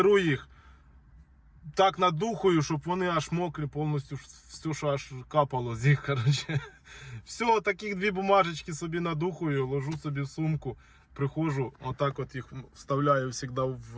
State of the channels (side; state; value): both; identical; correlation 1.00